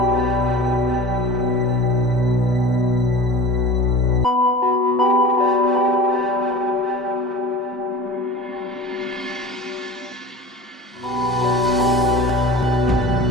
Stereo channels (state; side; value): normal; both; correlation 0.37